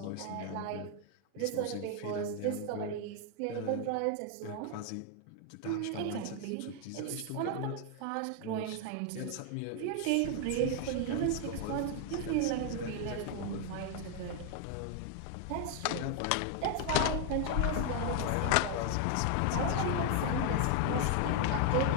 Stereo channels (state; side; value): different; both; correlation 0.00